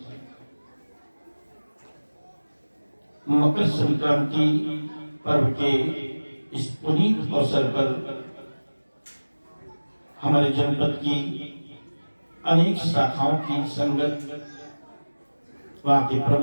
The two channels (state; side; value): inverted; both; correlation -1.00